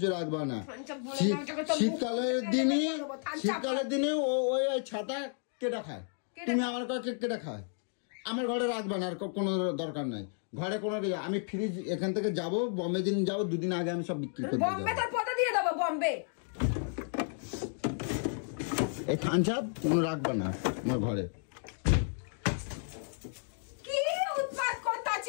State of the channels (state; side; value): silent; right; 56 dB below the other